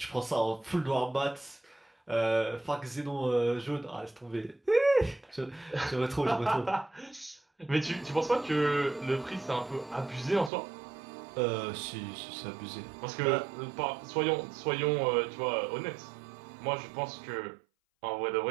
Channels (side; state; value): left; drops out; at 10.5 s